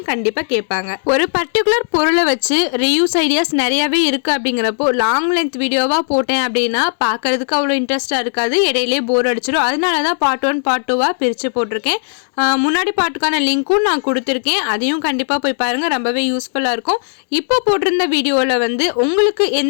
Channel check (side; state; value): right; silent; digital silence